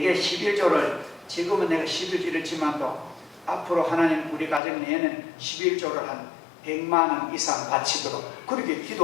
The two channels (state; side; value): drops out; right; at 4.6 s